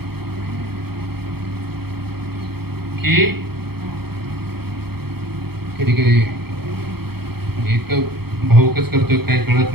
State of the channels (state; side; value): late; left; 0.95 ms